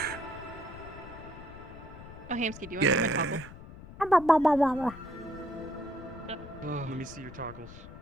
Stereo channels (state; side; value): noise; left; rumble, 15 dB below the sound